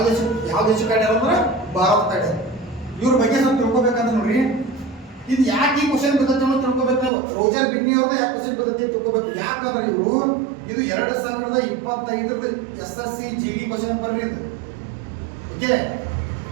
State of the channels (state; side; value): drops out; left; at 7.1 s